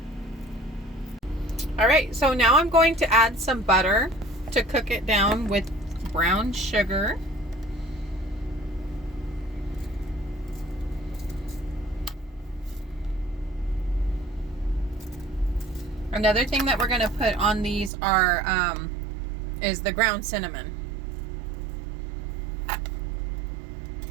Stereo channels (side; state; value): left; drops out; at 17.9 s